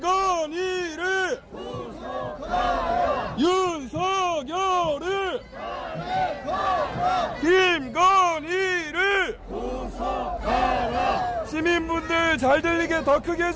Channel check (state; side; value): identical; both; correlation 1.00